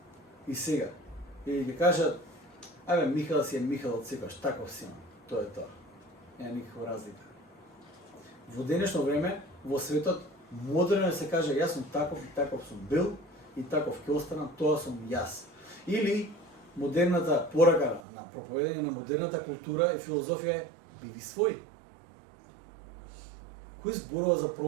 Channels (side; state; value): left; drops out; at 18.0 s